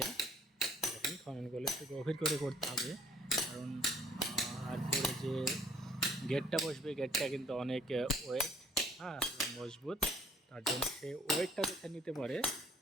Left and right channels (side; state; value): both; normal; correlation 0.59